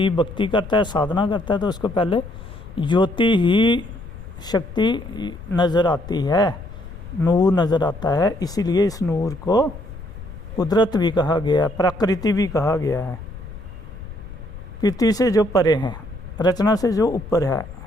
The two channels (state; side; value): noise; left; rumble, 13 dB below the sound